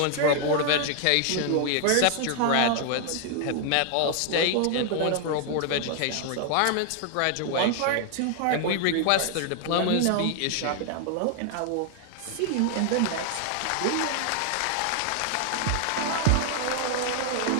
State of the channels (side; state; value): both; different; correlation 0.00